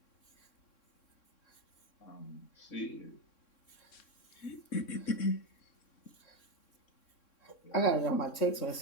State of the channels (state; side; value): late; right; 3.6 ms